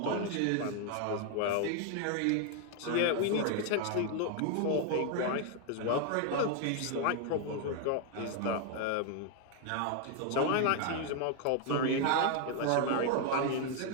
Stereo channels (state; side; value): different; both; correlation 0.00